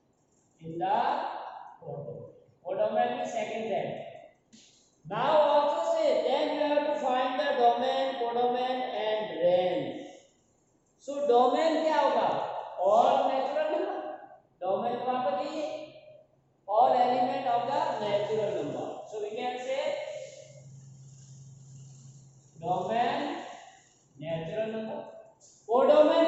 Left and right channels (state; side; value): identical; both; correlation 1.00